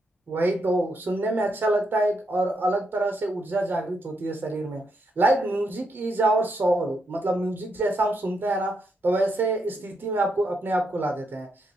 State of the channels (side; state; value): both; normal; correlation 0.80